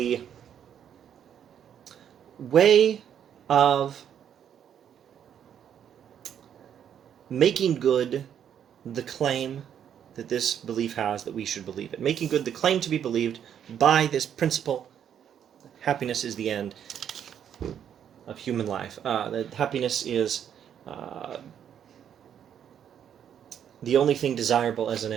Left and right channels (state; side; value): quieter; left; 9.1 dB